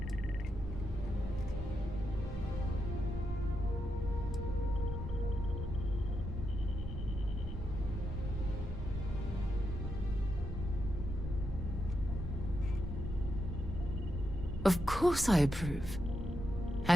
Of course I approve.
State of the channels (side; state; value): both; normal; correlation 0.84